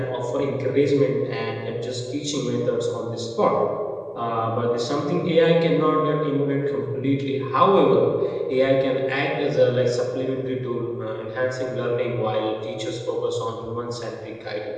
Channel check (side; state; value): both; identical; correlation 1.00